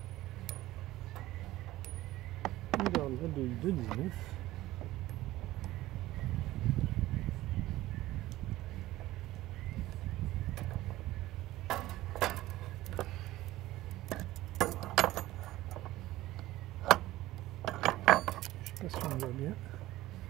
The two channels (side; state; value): left; quieter; 16.5 dB